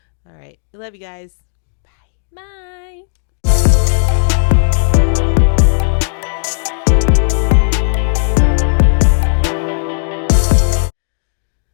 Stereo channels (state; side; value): silent; right; digital silence